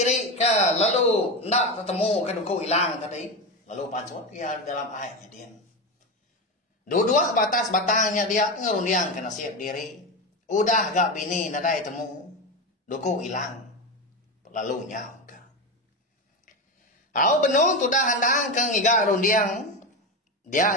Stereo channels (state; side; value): normal; both; correlation 0.17